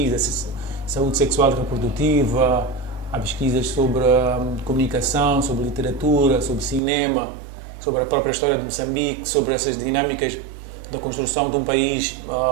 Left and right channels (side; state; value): left; drops out; at 6.8 s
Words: saúde sexual e reprodutiva, há pesquisas sobre comunicação, sobre literatura, sobre cinema, sobre a própria história de Moçambique, sobre essas dinâmicas da construção de um país